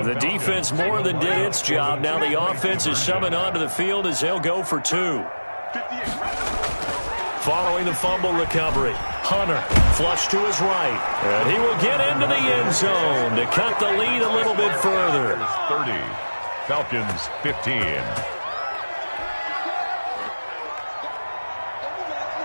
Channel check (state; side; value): inverted; both; correlation -1.00